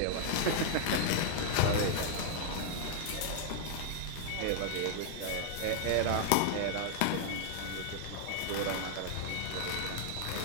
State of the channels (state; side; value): different; both; correlation -0.01